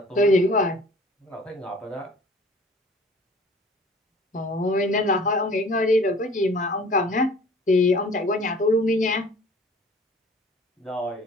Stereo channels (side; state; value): both; normal; correlation 0.49